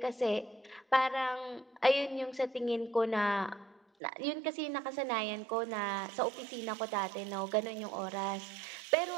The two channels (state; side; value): drops out; left; at 3.8 s